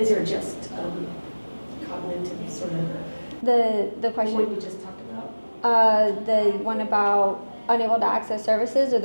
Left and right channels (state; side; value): inverted; both; correlation -1.00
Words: or just cognitive sort of? The question. What you just talked about? The one about unable to access services, or